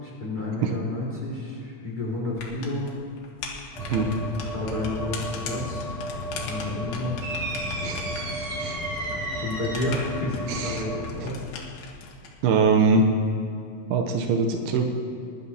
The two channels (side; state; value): both; normal; correlation 0.01